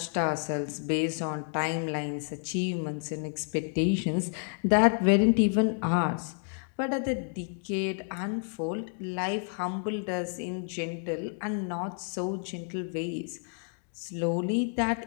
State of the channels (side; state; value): right; silent; 57 dB below the other